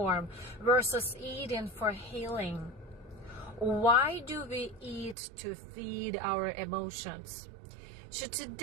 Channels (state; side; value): drops out; left; at 5.2 s